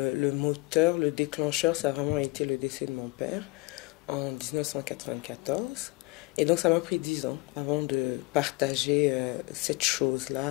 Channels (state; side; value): quieter; right; 23.3 dB